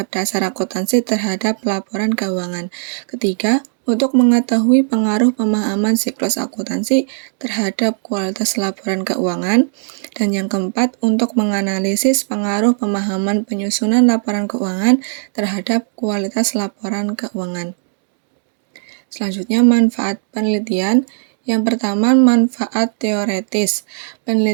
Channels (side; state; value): left; silent; digital silence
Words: dasar akuntansi terhadap laporan keuangan. Ketiga, untuk mengetahui pengaruh pemahaman siklus akuntansi terhadap kualitas laporan keuangan. Dan yang keempat, untuk menganalisis pengaruh pemahaman penyusunan laporan keuangan terhadap kualitas laporan keuangan. Selanjutnya, manfaat penelitian. Yang pertama, manfaat teoretis.